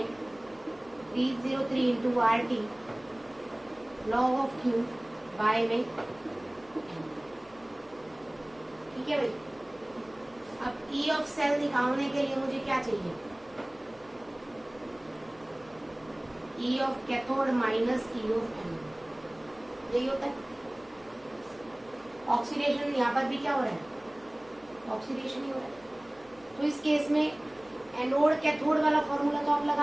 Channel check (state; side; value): noise; left; hum, 27 dB below the sound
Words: into RT log of Q by में n। ठीक है भाई। अब E ऑफ सेल निकालने के लिए मुझे क्या चाहिए, E of cathode minus E of anode. यही होता है। ऑक्सीडेशन यहाँ पर भी क्या हो रहा है, ऑक्सीडेशन ही हो रहा है। तो इस केस में एनोड कैथोड वाला फॉर्मूला तो आप